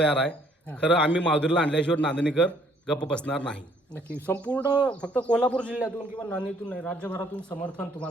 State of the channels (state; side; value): normal; both; correlation 0.64